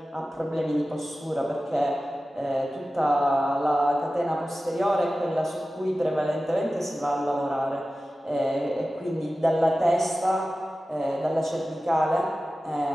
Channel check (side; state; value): both; normal; correlation 0.95